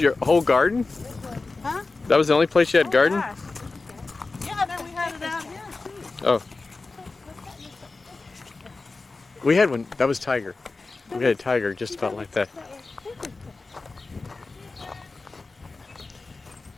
your whole garden? Huh? That was the only place you had garden? Gosh. Yeah, then we had it out here too. Oh. We had one. That was Tiger. We had a tiger just about like that.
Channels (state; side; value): quieter; right; 3.7 dB